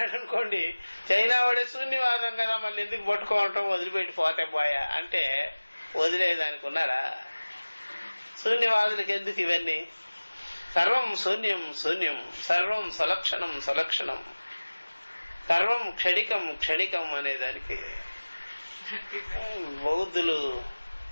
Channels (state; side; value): inverted; both; correlation -1.00